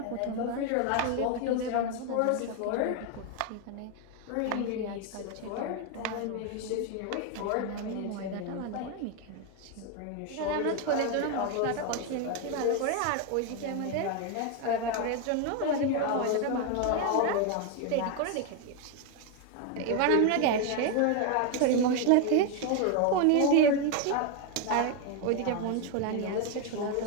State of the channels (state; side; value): different; both; correlation 0.01